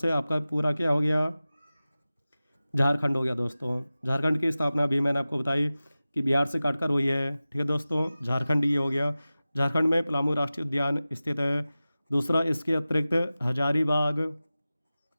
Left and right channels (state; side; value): inverted; both; correlation -0.96